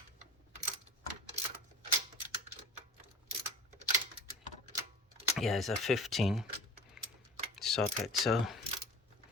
Yeah, it's a 15 socket, so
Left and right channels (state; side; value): normal; both; correlation 0.39